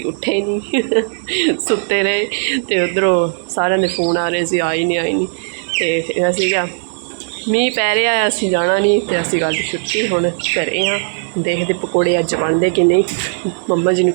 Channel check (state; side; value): silent; left; digital silence